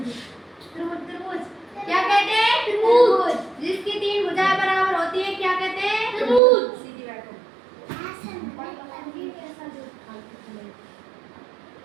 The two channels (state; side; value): drops out; left; at 6.4 s